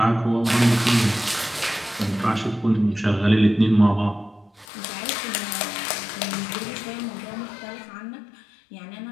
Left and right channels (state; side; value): drops out; right; at 4.7 s